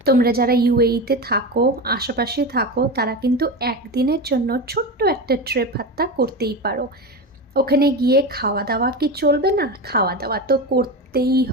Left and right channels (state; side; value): normal; both; correlation 0.22